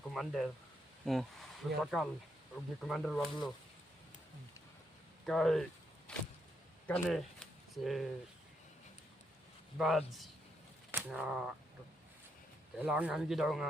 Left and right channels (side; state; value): both; normal; correlation 0.79